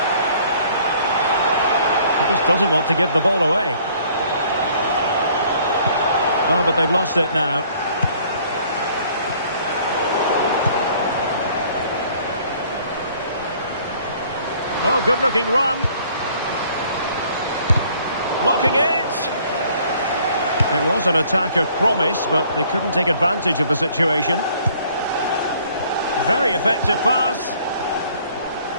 She just doesn't want to give the ball away. Oh, but they've lost it now. Oh, good-looking run. Blocking it. It was an attack of promise, but they couldn't take advantage of the situation. Very effective pass.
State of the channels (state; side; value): inverted; both; correlation -0.59